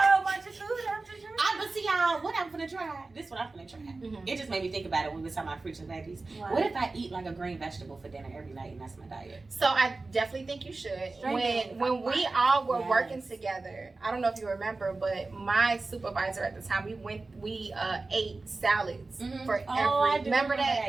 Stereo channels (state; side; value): quieter; left; 3.5 dB